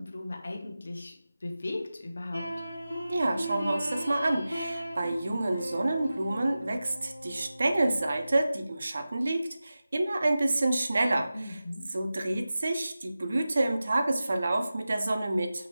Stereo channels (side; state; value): both; inverted; correlation -0.95